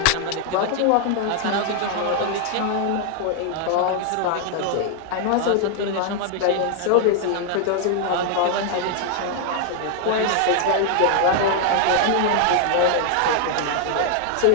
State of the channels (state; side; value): different; both; correlation 0.00